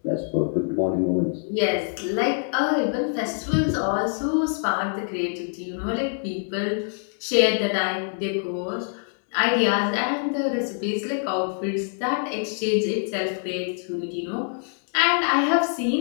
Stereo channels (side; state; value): right; silent; 59 dB below the other